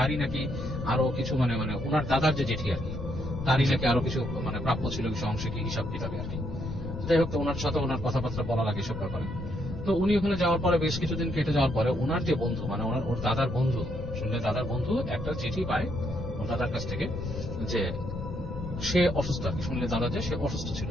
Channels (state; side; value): noise; left; rumble, 8 dB below the sound